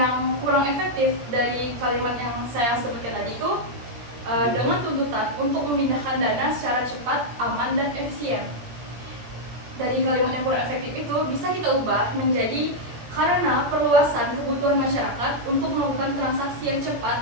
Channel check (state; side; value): late; left; 17 ms